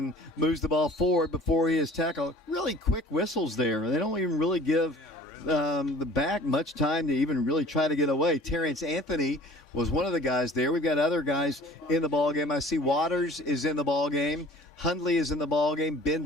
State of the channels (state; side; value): normal; both; correlation 0.48